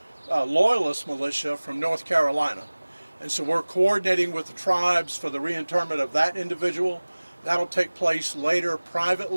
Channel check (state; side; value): inverted; both; correlation -1.00